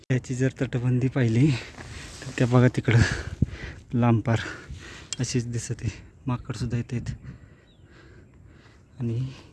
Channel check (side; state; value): both; identical; correlation 1.00